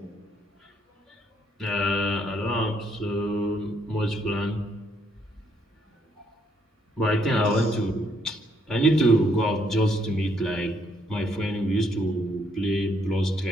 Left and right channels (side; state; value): both; normal; correlation 0.71